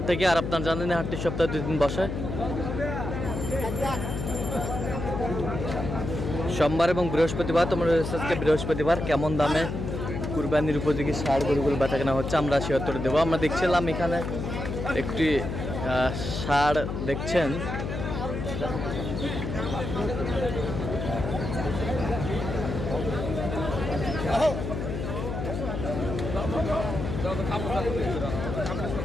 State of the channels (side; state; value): left; noise; hum, 4 dB below the sound